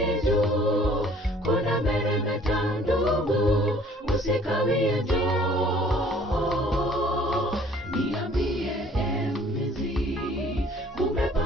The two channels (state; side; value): normal; both; correlation 0.55